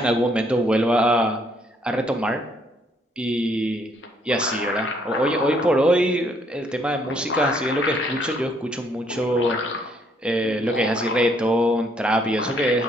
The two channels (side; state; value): both; normal; correlation 0.68